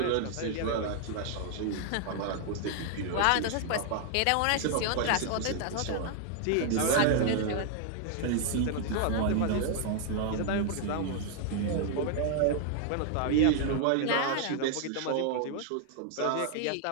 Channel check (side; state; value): both; different; correlation 0.00